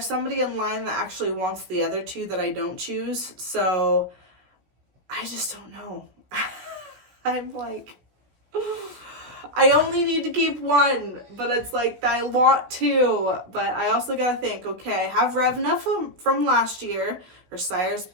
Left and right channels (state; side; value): late; left; 17 ms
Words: somebody in line that actually wants the other 2 that I don't choose, so I just don't know. I'm like, I only need to keep 1, but it's like, I want 2, but I also gotta think, okay, I have Revna from last year, her sire's